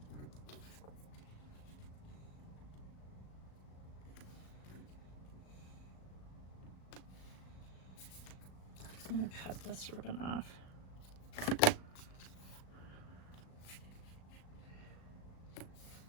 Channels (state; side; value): late; right; 37 ms